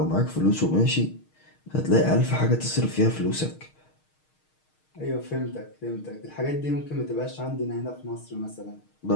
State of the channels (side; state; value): right; late; 6.5 ms